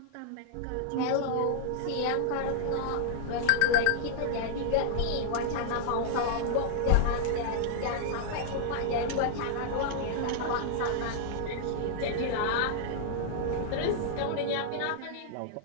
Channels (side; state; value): both; different; correlation -0.01